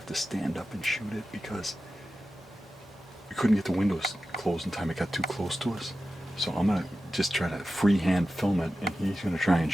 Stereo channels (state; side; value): normal; both; correlation 0.93